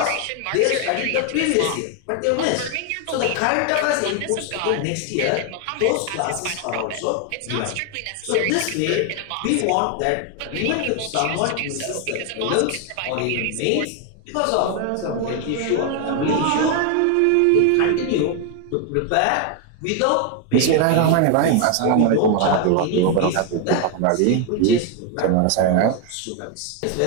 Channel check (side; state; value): both; different; correlation 0.01